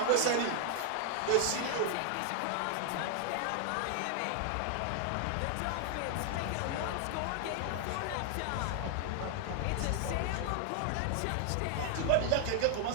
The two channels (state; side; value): different; both; correlation 0.00